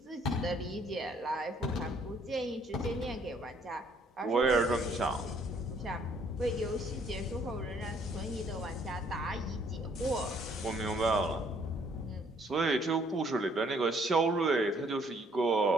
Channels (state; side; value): normal; both; correlation 0.64